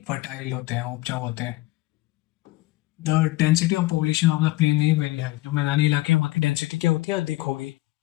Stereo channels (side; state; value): right; quieter; 18.7 dB